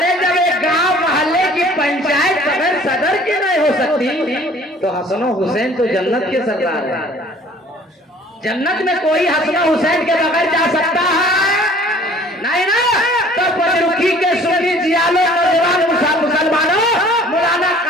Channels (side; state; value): both; normal; correlation 0.52